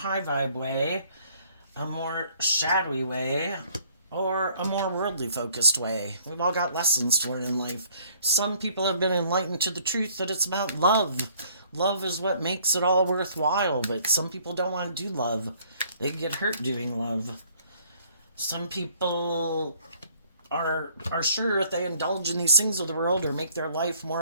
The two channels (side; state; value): both; inverted; correlation -0.61